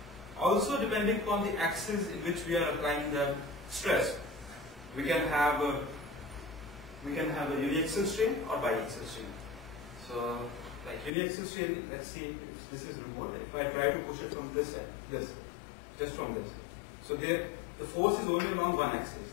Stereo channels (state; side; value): drops out; right; at 11.1 s